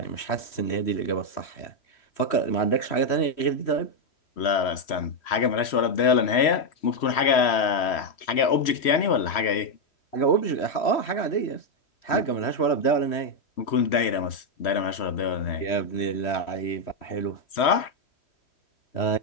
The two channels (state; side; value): late; right; 3.1 ms